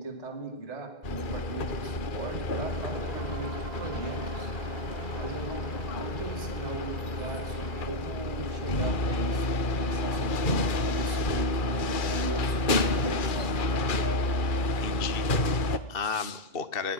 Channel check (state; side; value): late; right; 2.4 ms